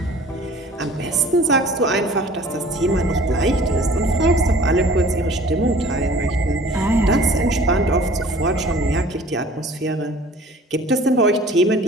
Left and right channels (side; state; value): both; normal; correlation 0.49